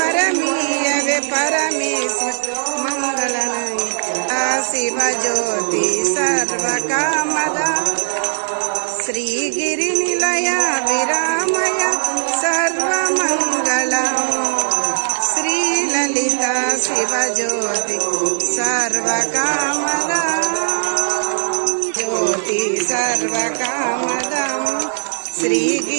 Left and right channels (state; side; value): silent; left; digital silence